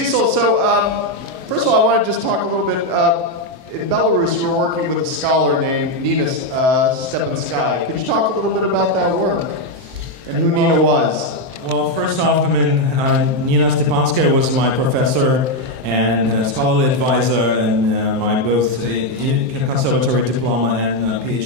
so first of all, I want to just talk a little bit. In Belarus, you were working with a scholar named Nina Stepanskaya. Could you talk a little bit about that work and who Nina was? Well, first off, Nina Stepanskaya was my professor and scholarly advisor and my both conservatory diploma and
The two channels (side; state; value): left; late; 23 ms